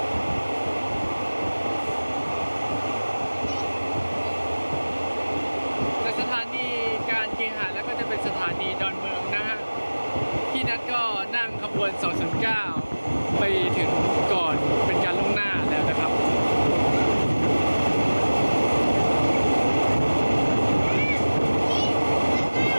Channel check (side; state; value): both; inverted; correlation -1.00